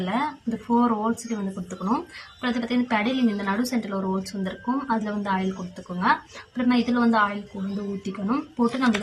இந்த 4 ஹோல்ஸுக்கு வந்து கொடுத்துக்கணும். அப்புறம் அது பார்த்திங்கன்னா பெடலிங் இந்த நடு சென்டரில் ஒரு ஹோல்ஸ் வந்துருக்கும், அதில் வந்து ஆயில் கொடுத்துக்கோங்க. அப்புறமா இதில் வந்து ஆயில் வந்து ஊற்றிக்கணும். போட்டு நம்ம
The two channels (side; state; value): both; identical; correlation 1.00